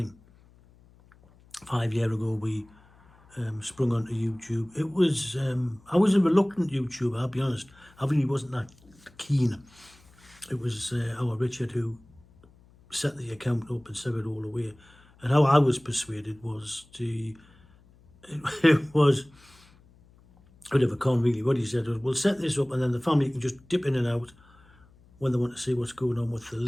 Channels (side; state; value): left; noise; hum, 28 dB below the sound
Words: 5 years ago we sprung onto YouTube. It was I was a reluctant YouTuber, I'll be honest. I really wasn't that keen. It was our Richard who set the account up and set it all away. And how I was persuaded was it was a bit of a con really. What he said was, we'll set this up and then the family can just dip in and out when they want to see what's going on with the